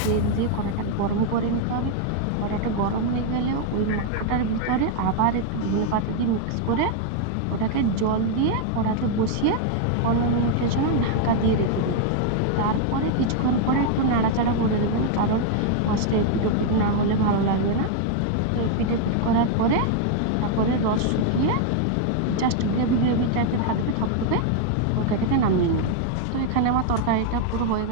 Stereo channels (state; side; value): different; both; correlation 0.00